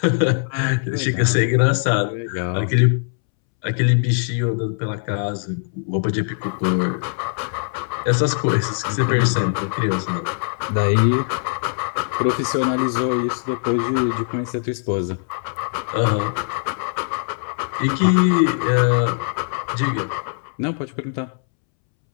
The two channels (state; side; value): silent; right; 65 dB below the other